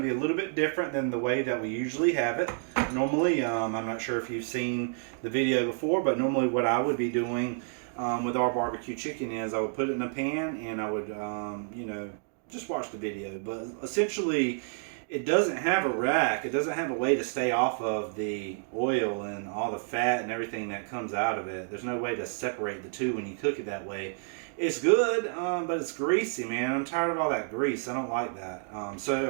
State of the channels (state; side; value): silent; left; 58 dB below the other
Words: be a little bit different than the way that we usually have it. Normally, I'm not sure if you've seen the video before, but normally what I would be doing with our barbecue chicken is I would put it in a pan and I would, just watch the video. But essentially, it doesn't have a rack. It doesn't have a way to stay off of the oil and all the fat and everything that comes out of it. There's no way to separate the two when you cook it that way. It's good, but it's greasy, man. I'm tired of all that grease. I don't like that. So